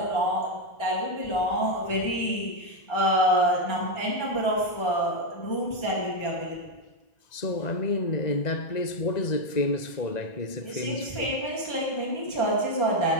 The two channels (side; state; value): right; late; 1.9 ms